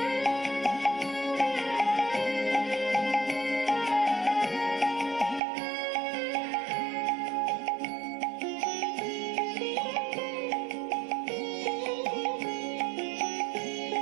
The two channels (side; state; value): left; drops out; at 5.4 s